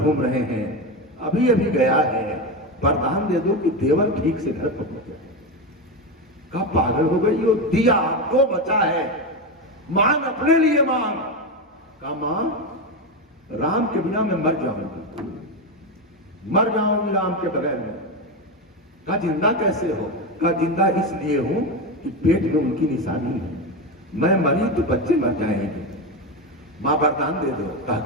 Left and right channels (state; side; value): normal; both; correlation 0.15